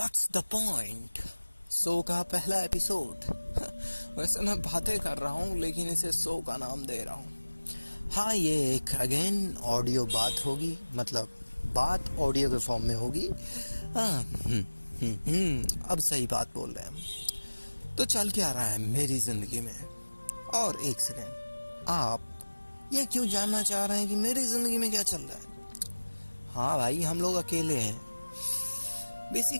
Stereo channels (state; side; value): inverted; both; correlation -1.00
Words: the point. Show का पहला episode. वैसे मैं बातें कर रहा हूँ लेकिन इसे शो का नाम दे रहा हूँ। हाँ, ये एक अगेन ऑडियो बात होगी, मतलब बात ऑडियो के फॉर्म में होगी। हाँ, अब सही बात बोल रहे हैं हम। तो चल क्या रहा है मेरी जिंदगी में। और एक सेकेंड, आप ये क्यों जानना चाह रहे हैं कि मेरी जिंदगी में क्या चल रहा है? हाँ भाई, हम लोग अकेले हैं।